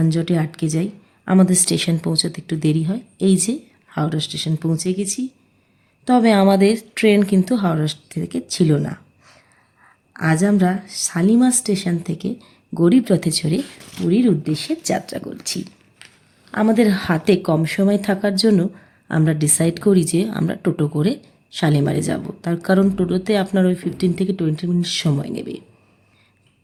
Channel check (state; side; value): identical; both; correlation 1.00